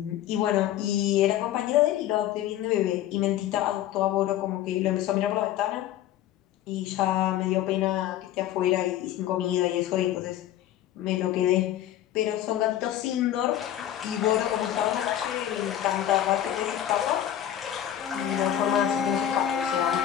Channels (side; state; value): right; quieter; 11.8 dB